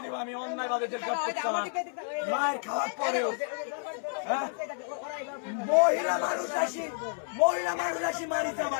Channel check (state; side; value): silent; right; 58 dB below the other